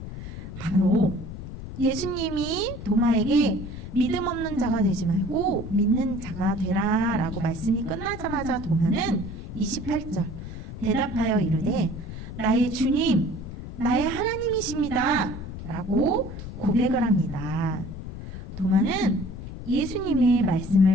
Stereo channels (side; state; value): left; noise; rumble, 10 dB below the sound